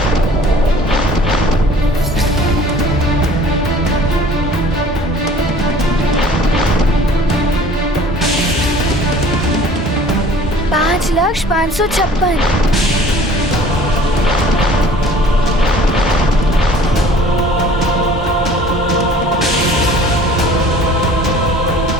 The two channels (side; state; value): both; normal; correlation 0.49